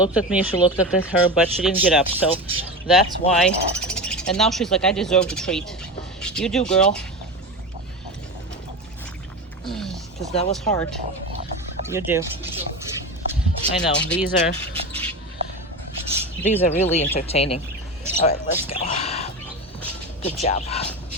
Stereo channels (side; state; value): both; normal; correlation 0.24